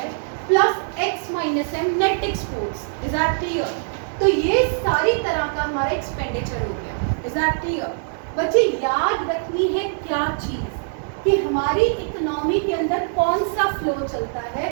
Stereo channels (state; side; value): silent; left; digital silence